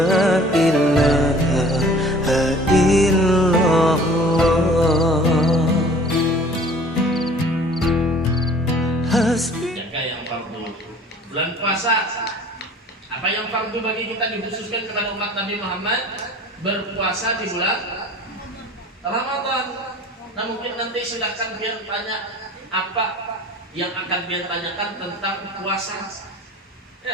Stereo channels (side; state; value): both; normal; correlation 0.49